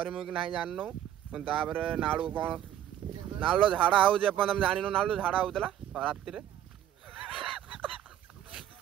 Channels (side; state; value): left; quieter; 11.4 dB